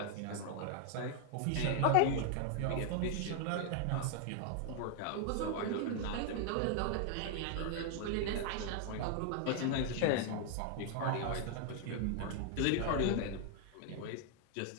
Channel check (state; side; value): different; both; correlation 0.00